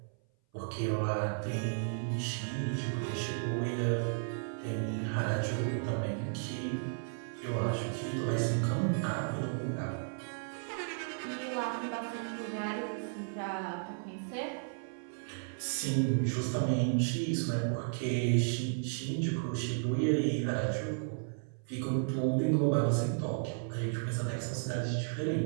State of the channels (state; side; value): silent; left; 55 dB below the other